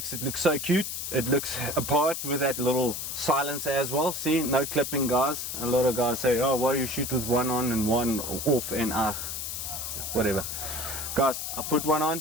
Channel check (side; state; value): left; noise; hiss, 5 dB below the sound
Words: it look so cute. It looks apart with that little silencer as well. See, no clipping, guys. A lot of guys say, oh, why you shoot with one on and one off, and whatever. Guys, I put one on